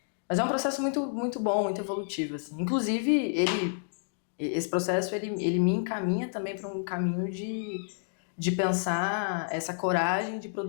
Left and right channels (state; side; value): silent; right; digital silence